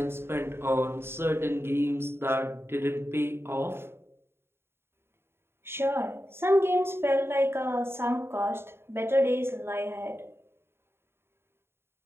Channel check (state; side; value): late; left; 0.11 ms